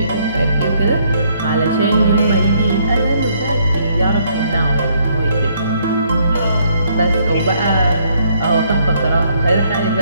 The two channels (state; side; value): inverted; both; correlation -0.68